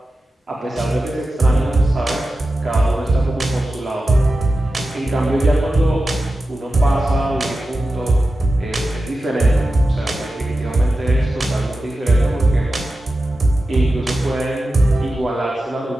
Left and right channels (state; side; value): normal; both; correlation 0.93